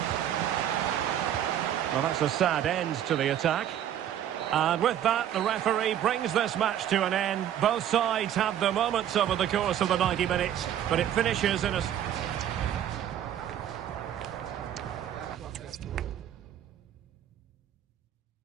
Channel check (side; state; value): left; quieter; 10.7 dB